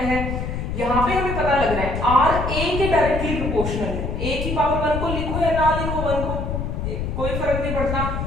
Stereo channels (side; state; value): left; noise; rumble, 3 dB below the sound